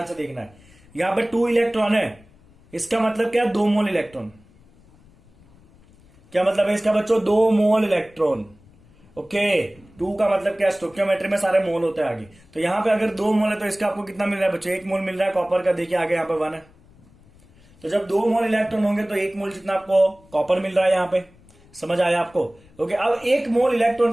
से देखना है। यहां पे 2 इलेक्ट्रॉन है, इसका मतलब क्या, 2 मोल इलेक्ट्रॉन। क्या मतलब है इसका बच्चों, 2 मोल इलेक्ट्रॉन। ओके, 2 का मतलब क्या, स्टोइकियोमेट्री में सारे मोल होते हैं आगे। तो यहां पे अगर 2 मोल है तो इसका आपको कितना मिल रहा है बच्चों, 1 मोल मिल रहा है कॉपर का। देखिए आगे यहां पे 1 है, तो जब 2 मोल इलेक्ट्रॉन होंगे तो 1 मोल जितना आपको कॉपर मिल रहा है यहां पे। समझ आया आपको? ओके, अब 1 मोल इलेक्ट्रॉन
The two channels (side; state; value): left; noise; rumble, 28 dB below the sound